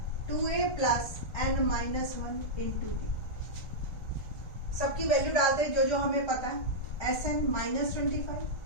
2A plus n minus 1 into D। सबकी वैल्यू डालते हैं जो जो हमें पता है। SN -25,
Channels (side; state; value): right; late; 1.4 ms